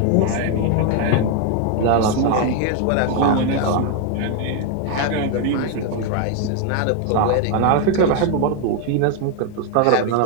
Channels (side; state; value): both; different; correlation 0.00